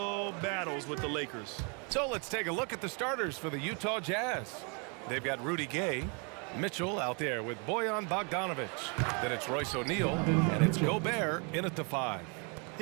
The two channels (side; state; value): left; quieter; 34.9 dB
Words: battles with the Lakers. So let's take a look at the starters for the Utah Jazz. They've got Rudy Gay, Mitchell out there with Bojan Bogdanovic. Then it's Royce O'Neal, and it's Gobert in at the 5.